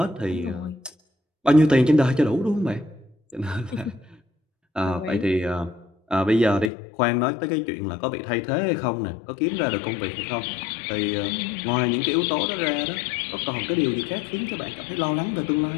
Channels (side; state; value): right; drops out; at 6.7 s